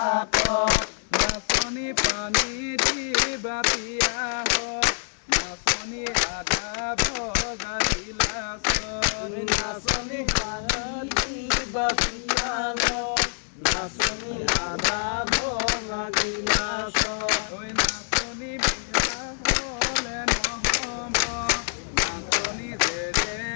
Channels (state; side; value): silent; right; 61 dB below the other